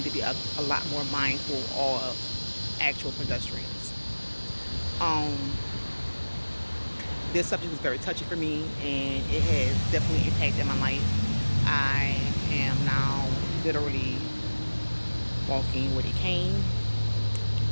to be a lot more mindful of actual pedestrians. Um, this subject is very touchy for me, and it has definitely impacted my life. I am now literally walking with a cane.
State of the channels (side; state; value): both; inverted; correlation -1.00